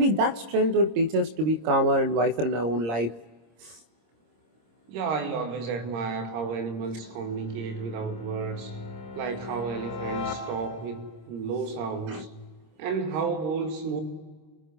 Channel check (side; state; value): left; late; 26 ms